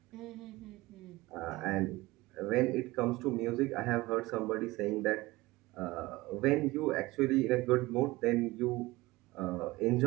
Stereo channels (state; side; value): quieter; left; 20.2 dB